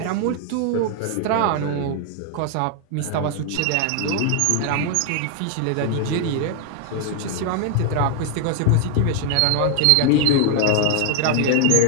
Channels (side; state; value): both; different; correlation 0.00